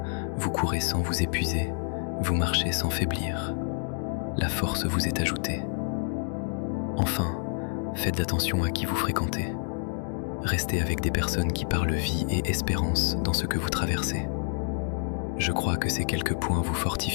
vous courez sans vous épuiser, vous marchez sans faiblir. La force vous est ajoutée. Enfin, faites attention à qui vous fréquentez. Restez avec des personnes qui parlent vie et espérance dans ce que vous traversez. Je crois que ces quelques points vous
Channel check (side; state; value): right; silent; 59 dB below the other